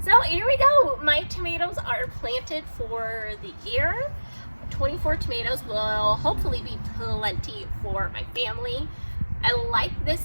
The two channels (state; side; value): inverted; both; correlation -1.00